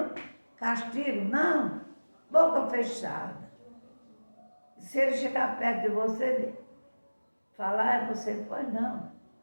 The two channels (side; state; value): both; inverted; correlation -1.00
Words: castigo. Não, boca fechada. Se ele chegar perto de você, falar, você, pois não.